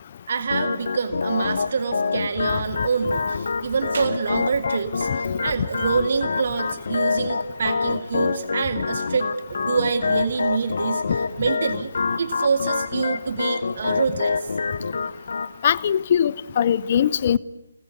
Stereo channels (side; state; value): both; inverted; correlation -0.80